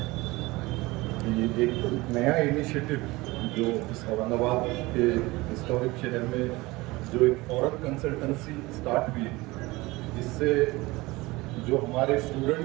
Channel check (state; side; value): quieter; left; 21.4 dB